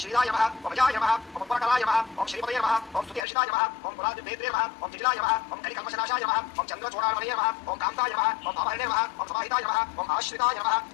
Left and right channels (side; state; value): right; drops out; at 3.2 s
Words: శ్రీరాయ నమః ఓం అజాయ నమః ఓం ఉపకరాయ నమః ఓం శ్రీపదే నమః ఓం స్తుతిహర్షితాయ నమః ఓం పురాదివేత్రే నమః ఓం జిజిలాయ నమః ఓం కలికల్మషనాశాయ నమః ఓం చంద్రచూడామణే నమః ఓం కాంతాయ నమః ఓం భామహరణే నమః ఓం సమాహితాయ నమః ఓం ఆశ్రితాయ నమః